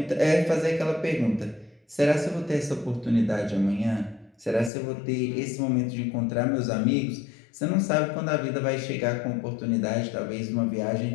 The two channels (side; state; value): right; drops out; at 4.7 s